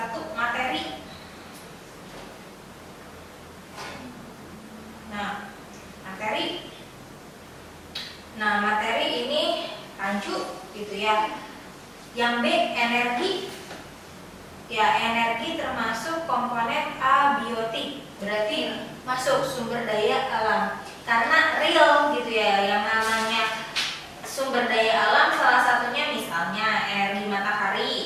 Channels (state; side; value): identical; both; correlation 1.00